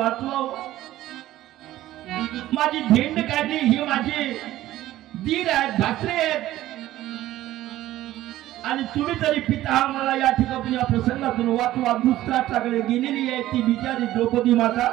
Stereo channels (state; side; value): quieter; left; 14.7 dB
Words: माझी झेंड काढली, ही माझे दीर आहेत, भासरे आहेत आणि तुम्ही तरी पिता मला या ठिकाणी या प्रसंगातून वाचवा. धृतराष्ट्राकडे गेलेली आहे ती बिचारी द्रौपदी माता.